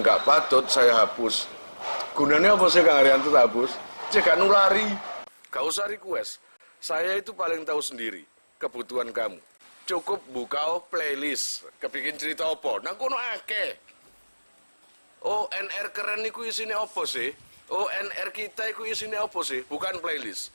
gak patut saya hapus. Gunanya apa sih Kang Arianto tak hapus? Cek gak nulari. Gak usah request. Saya itu paling tahu sendiri kebutuhan kamu. Cukup buka playlist, kepingin cerita apa? Nang kono akeh. ONR keren niku isine apa sih? ONR kita iku isine apa sih? Bukan playlist.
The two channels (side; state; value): both; inverted; correlation -1.00